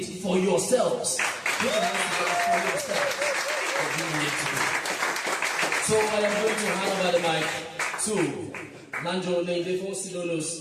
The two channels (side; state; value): both; identical; correlation 1.00